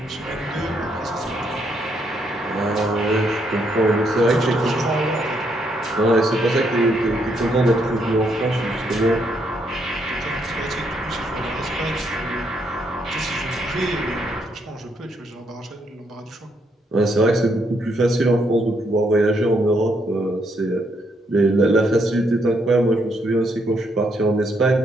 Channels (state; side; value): normal; both; correlation 0.74